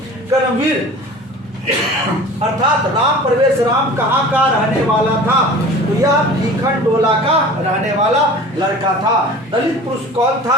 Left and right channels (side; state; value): both; normal; correlation 0.41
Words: कर्मवीर अर्थात राम प्रवेश राम कहाँ का रहने वाला था? तो यह भीखन टोला का रहने वाला लड़का था। दलित पुरुष कौन